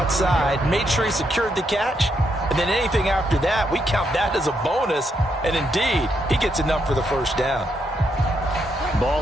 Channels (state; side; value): normal; both; correlation 0.78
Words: made sure he secured the catch, and then anything after that, we count that as a bonus. And indeed, he gets enough for the first down.